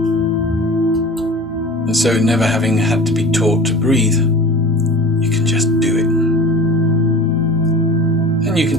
And so never having had to be taught to breathe, you can just do it. And you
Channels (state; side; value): normal; both; correlation 0.38